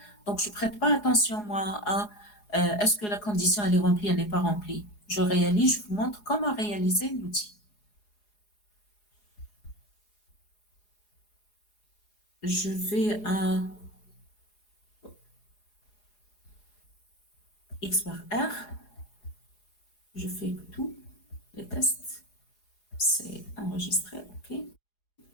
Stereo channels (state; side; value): late; right; 4.8 ms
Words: Donc, je prête pas attention, moi, à est-ce que la condition elle est remplie, elle n'est pas remplie. Je réalise, je vous montre comment réaliser l'outil. Je vais à X par R. Je fais tout, les tests. C'est enregistré, OK.